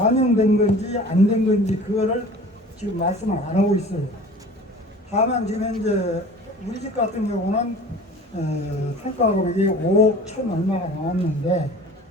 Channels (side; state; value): both; normal; correlation 0.43